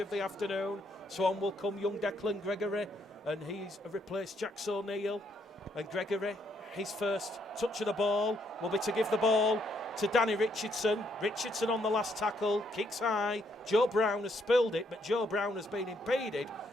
the afternoon. So on will come young Declan Gregory, and he's replaced Jax O'Neill. And Gregory, his first touch of the ball will be to give the ball to Danny Richardson. Richardson on the last tackle, kicks high. Joe Brown has spilled it, but Joe Brown has been impeded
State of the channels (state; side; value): normal; both; correlation 0.73